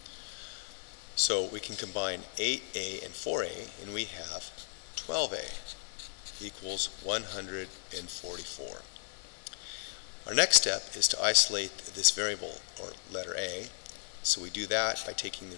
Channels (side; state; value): right; silent; digital silence